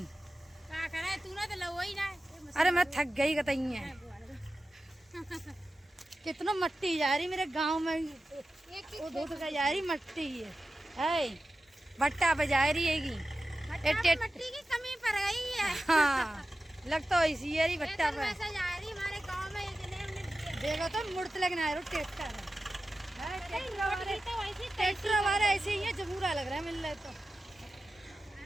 तूने तो लो ही ना। अरे मैं थक गई कतई है। कितना मट्टी जा रही मेरे गांव में, वो धोत का जा रही मट्टी है भट्टा बजा रही हैगी। मट्टी की कमी पड़ गई है। हाँ लगता है इसी है भट्टा पे। ऐसा जा रही हमारे गांव में इतने देखो तो मुड़त लगना है ट्रैक्टर ट्रैक्टर हमारा ऐसे ही है, जमूरा लग रहा है मिल रहा है तो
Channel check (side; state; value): both; normal; correlation 0.94